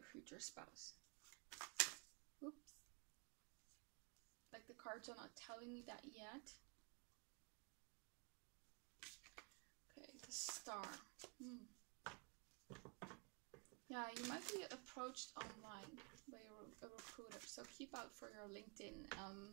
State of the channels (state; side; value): quieter; left; 33.8 dB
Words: future spouse. Oops. Like the cards are not telling me that yet. Okay, the Star. Yeah, you might be approached online by a recruiter, so keep out for your LinkedIn